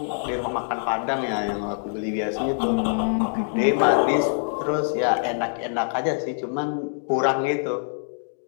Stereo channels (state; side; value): silent; right; digital silence